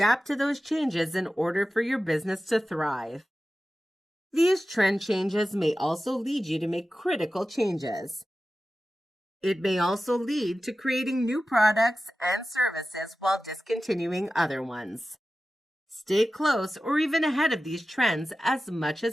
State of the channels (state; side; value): normal; both; correlation 0.94